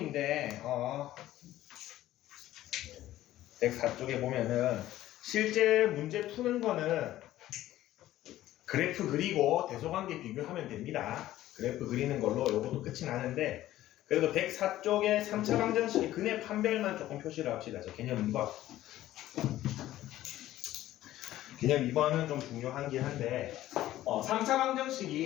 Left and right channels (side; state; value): right; quieter; 14.4 dB